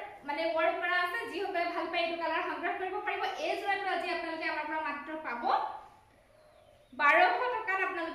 মানে ওয়াৰ্ক কৰা আছে। যিসকলে ভাল পায় এইটো কালাৰ সংগ্ৰহ কৰিব পাৰিব। এই জোৰাটো আজি আপোনালোকে আমাৰ পৰা মাত্ৰ পাব 1200 টকাত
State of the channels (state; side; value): identical; both; correlation 1.00